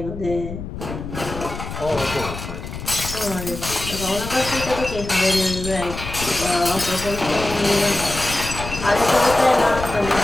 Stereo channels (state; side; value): noise; left; rumble, 9 dB below the sound